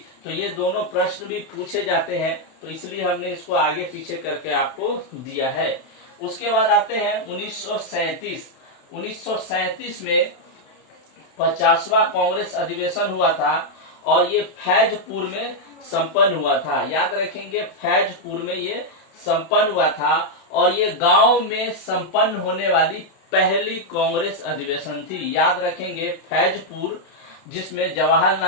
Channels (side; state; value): right; late; 32 ms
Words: तो ये दोनों प्रश्न भी पूछे जाते हैं, तो इसलिए हमने इसको आगे पीछे करके आपको दिया है। उसके बाद आते हैं 1937। 1937 में 50वां कांग्रेस अधिवेशन हुआ था और ये फैजपुर में संपन्न हुआ था। याद रखेंगे, फैजपुर में ये संपन्न हुआ था और ये गांव में संपन्न होने वाली पहली कांग्रेस अधिवेशन थी। याद रखेंगे, फैजपुर, जिसमें